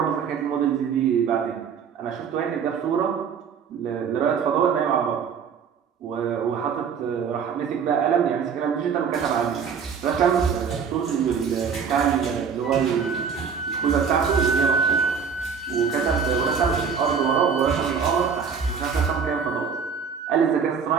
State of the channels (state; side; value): quieter; left; 6.5 dB